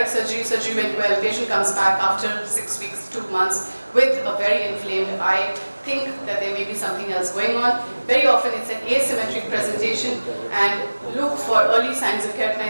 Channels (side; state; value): both; inverted; correlation -1.00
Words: surgery, surgery went well, patient comes back after 6 weeks, 2 months with a very inflamed eye. Think that there may be something else going on. Very often it's an asymmetric presentation, and look for early signs of